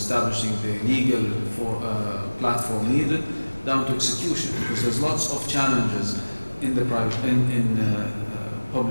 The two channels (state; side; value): inverted; both; correlation -1.00